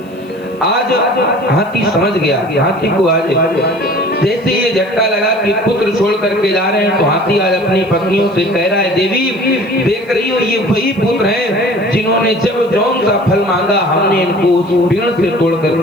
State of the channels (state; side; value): noise; right; hiss, 30 dB below the sound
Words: आज हाथी समझ गया, हाथी को आज जैसे ये झटका लगा कि पुत्र छोड़ करके जा रहे हैं तो हाथी आज अपनी पत्नियों से कह रहा है, देवी देख रही हो ये वही पुत्र हैं जिन्होंने जब जौन सा फल मांगा हमने इनको उस पेड़ से तोड़